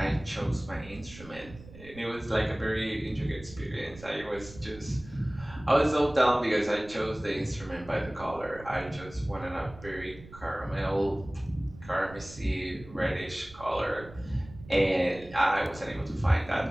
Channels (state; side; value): noise; right; rumble, 18 dB below the sound